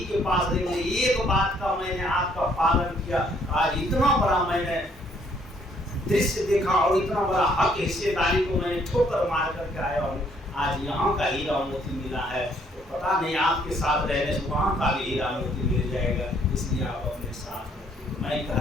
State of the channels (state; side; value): normal; both; correlation 0.66